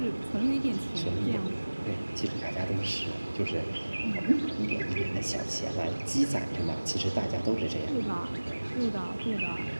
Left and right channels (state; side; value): inverted; both; correlation -1.00